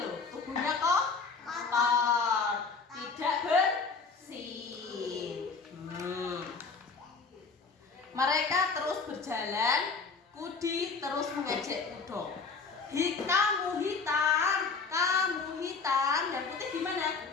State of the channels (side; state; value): right; quieter; 4.7 dB